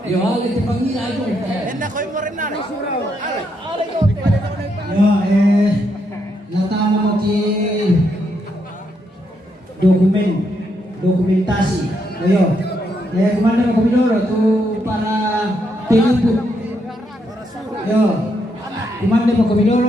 Yo ale te pangila ajo. Enda koy mo rin na. Ya, natama mo ki dokumentasi. Ayo. Kemana mau Komidoro tuh para penjemput. Yo. Kemana mau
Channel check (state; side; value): normal; both; correlation 0.78